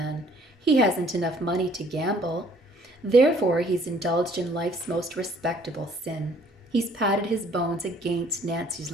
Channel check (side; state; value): both; normal; correlation 0.59